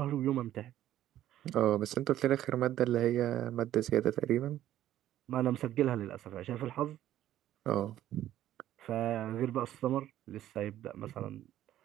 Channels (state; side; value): quieter; left; 12.7 dB